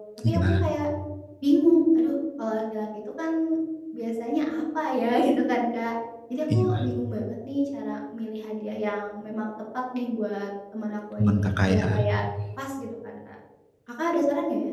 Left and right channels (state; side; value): identical; both; correlation 1.00